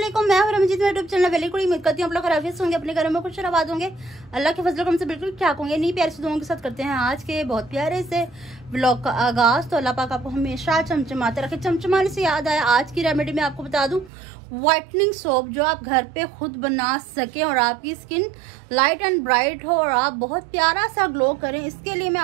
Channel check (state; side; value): drops out; left; at 14.1 s